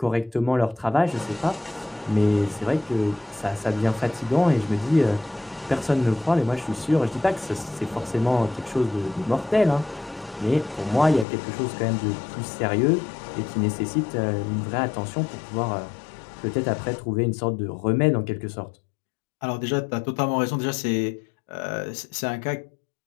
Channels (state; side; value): drops out; right; at 11.2 s